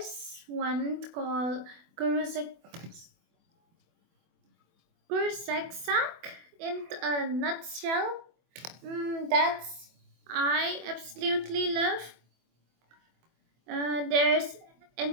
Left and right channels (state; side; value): late; left; 24 ms